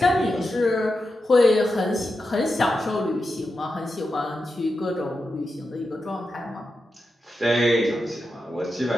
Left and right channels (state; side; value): normal; both; correlation 0.89